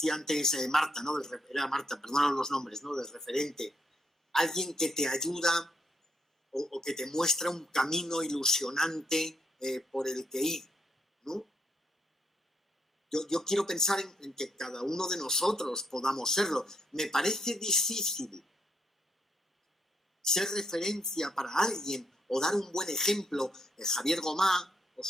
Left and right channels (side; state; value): both; normal; correlation 0.76